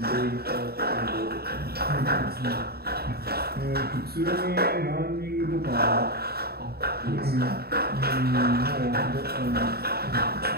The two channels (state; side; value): late; left; 0.46 ms